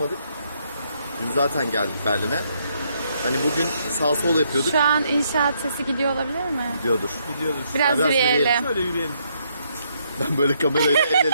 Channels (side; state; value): both; inverted; correlation -0.73